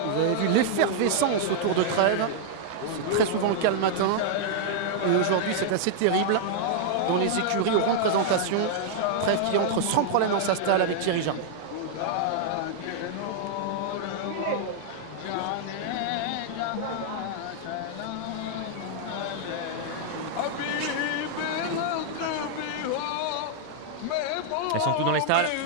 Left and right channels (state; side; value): different; both; correlation -0.01